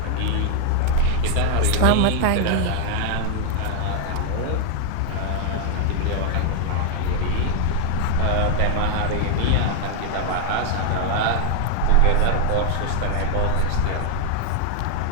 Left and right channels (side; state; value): both; different; correlation 0.00